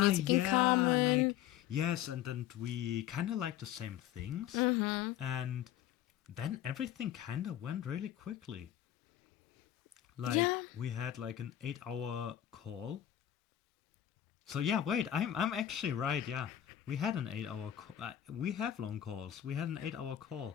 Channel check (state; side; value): quieter; right; 11.7 dB